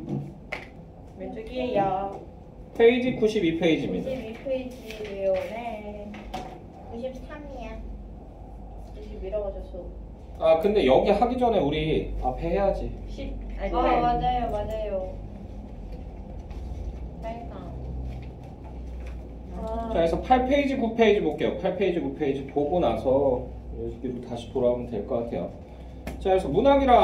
왼쪽이에요. 페이지 92페이지입니다. 92페이지예요. 네. 93이야. 91라고 아, 근데 여기 하기 전에 우리 앞에 해야지. 10. 아니, 맞아요. 빨강. 자, 그래서 8페이지, 9페이지 볼게요. 8페이지, 9페이지 보고 나서 여기로 다시 돌아오면 될 것 같아요. 자, 그래서 문학이란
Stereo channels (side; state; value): both; identical; correlation 1.00